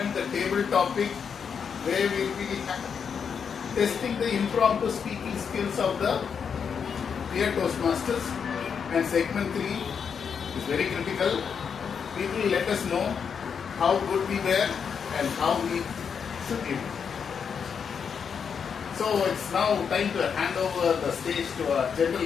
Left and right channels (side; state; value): right; quieter; 6.7 dB